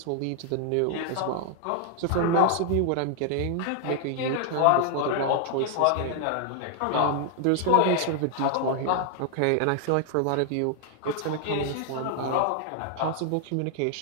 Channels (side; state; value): both; different; correlation 0.00